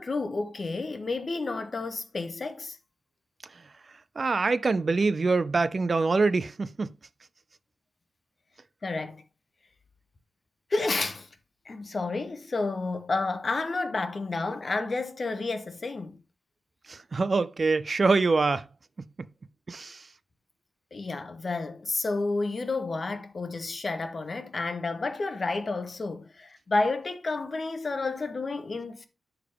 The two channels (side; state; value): both; normal; correlation 0.91